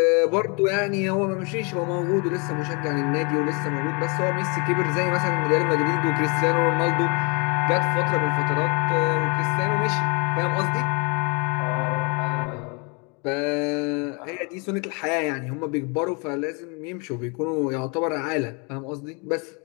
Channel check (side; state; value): right; quieter; 33.0 dB